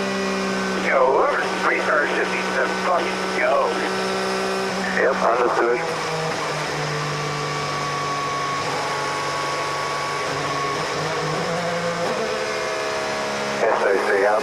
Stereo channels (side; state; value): both; identical; correlation 1.00